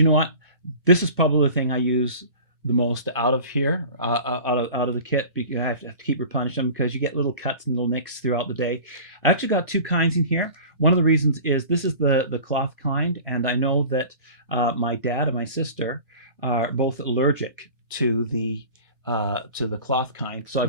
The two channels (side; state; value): both; inverted; correlation -0.40